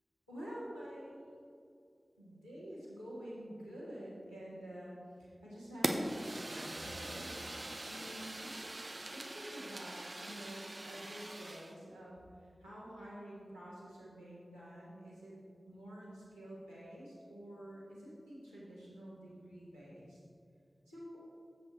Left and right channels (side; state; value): both; normal; correlation 0.96